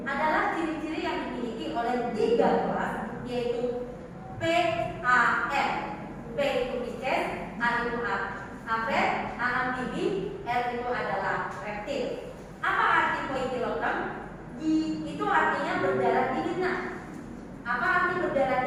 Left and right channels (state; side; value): identical; both; correlation 1.00